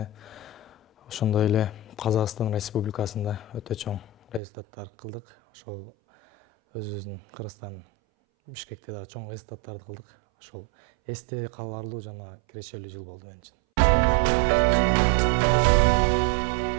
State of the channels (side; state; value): left; drops out; at 4.4 s